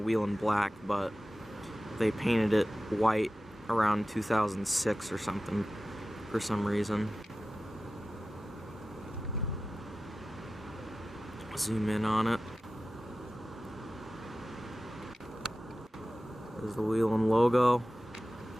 wheel in black, but they painted it white around 2006 or something, for some reason. Zoom in on it. There's the wheel and logo.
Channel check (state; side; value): normal; both; correlation 0.95